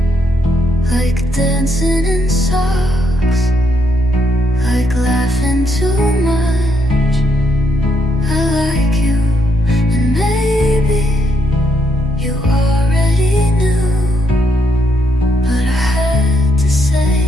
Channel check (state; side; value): normal; both; correlation 0.76